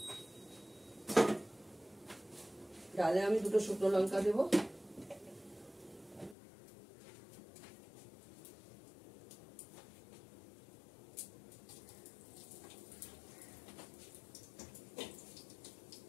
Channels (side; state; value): right; drops out; at 6.4 s